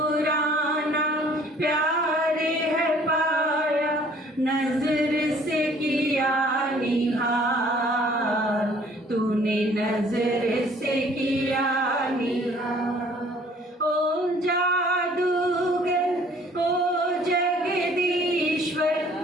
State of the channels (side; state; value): both; normal; correlation 0.56